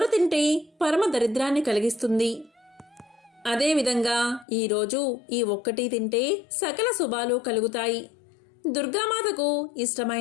తింటే పరమ దరిద్రాన్ని కలిగిస్తుంది. అదేవిధంగా ఈరోజు ఈ ఒక్కటి తింటే సకల శుభాలు కలుగుతాయి. దుర్గామాతకు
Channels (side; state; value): right; drops out; at 4.5 s